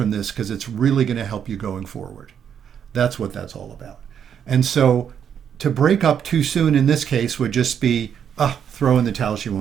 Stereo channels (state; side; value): quieter; left; 8.3 dB